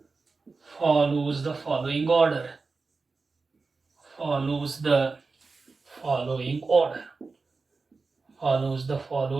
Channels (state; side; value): quieter; left; 4.2 dB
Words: follows the following order.